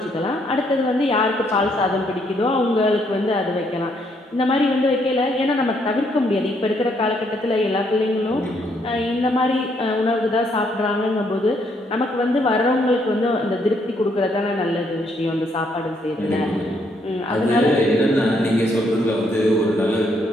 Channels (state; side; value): normal; both; correlation 0.72